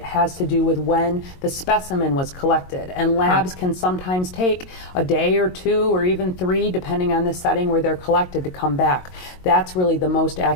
has to do with when the specimen was collected. And labs can sometimes take a day or two or even 3, depending on the setting where they're collected, to come back. That's really the most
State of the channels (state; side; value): late; right; 22 ms